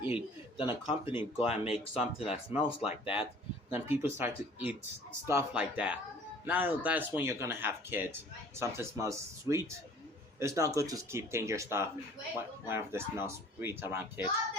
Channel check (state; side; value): normal; both; correlation 0.51